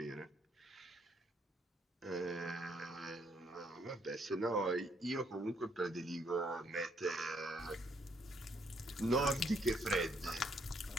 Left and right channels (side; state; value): both; normal; correlation 0.70